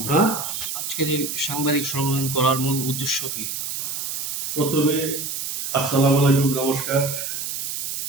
হ্যাঁ, আজকের এই সাংবাদিক সম্মেলন করার মূল উদ্দেশ্য কি? প্রথমে আসসালামু আলাইকুম, নমস্কার।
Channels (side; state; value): right; noise; hiss, 4 dB below the sound